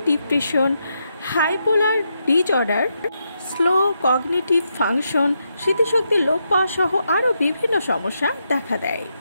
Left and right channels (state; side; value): inverted; both; correlation -0.82